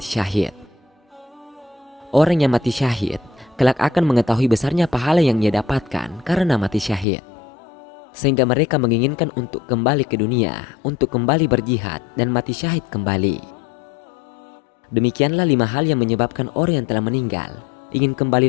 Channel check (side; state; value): right; drops out; at 7.1 s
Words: syahid. Orang yang mati syahid kelak akan mengetahui besarnya pahala yang ia dapatkan karena mati syahid. Sehingga mereka menginginkan untuk kembali ke dunia, untuk kembali berjihad dan mati syahid kembali. Demikianlah 5 hal yang menyebabkan orang yang telah meninggal ingin